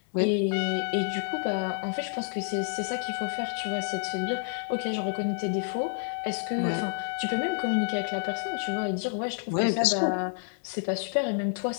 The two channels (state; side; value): silent; right; digital silence